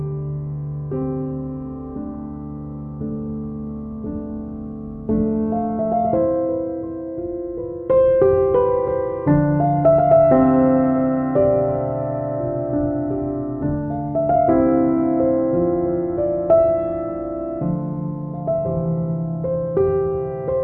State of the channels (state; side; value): identical; both; correlation 1.00